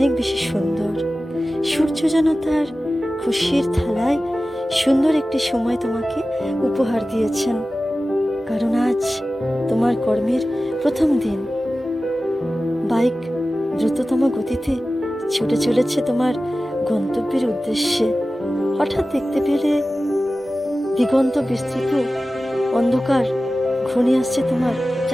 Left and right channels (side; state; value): both; normal; correlation 0.95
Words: বেশি সুন্দর। সূর্য যেন তার খুশির থালায় সুন্দর একটি সময় তোমাকে উপহার দিয়েছেন, কারণ আজ তোমার কর্মের প্রথম দিন। বাইক দ্রুততম গতিতে ছুটে চলেছে তোমার গন্তব্যের উদ্দেশ্যে। হঠাৎ দেখতে পেলে দিগন্ত বিস্তৃত অন্ধকার ঘনিয়ে আসছে তোমার